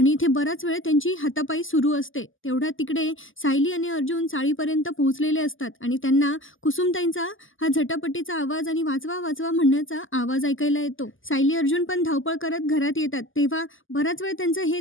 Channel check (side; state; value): right; late; 0.58 ms